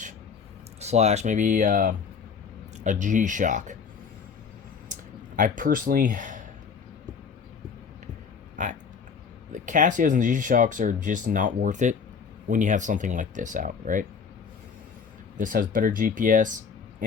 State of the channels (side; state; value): right; quieter; 6.0 dB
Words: slash maybe a G-Shock. I personally, the Casios and G-Shocks are just not worth it when you have something like this out, right? This has better GPS,